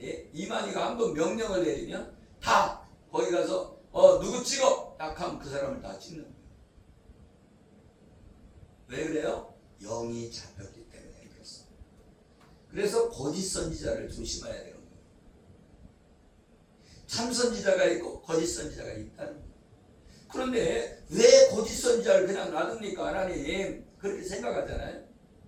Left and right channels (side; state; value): both; identical; correlation 1.00